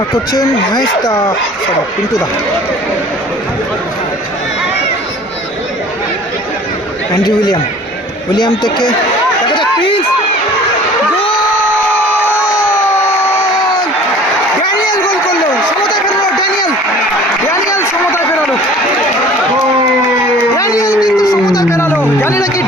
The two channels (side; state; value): both; normal; correlation 0.48